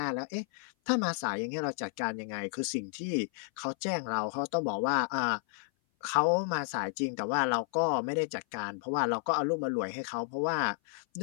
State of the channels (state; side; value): silent; right; 56 dB below the other